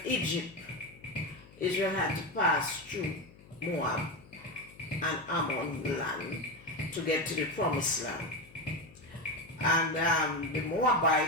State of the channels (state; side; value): noise; left; hum, 23 dB below the sound